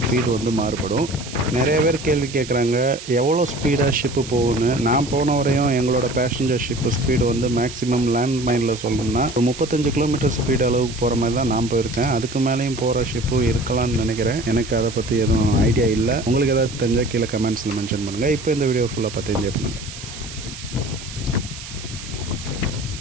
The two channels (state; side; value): noise; right; hiss, 13 dB below the sound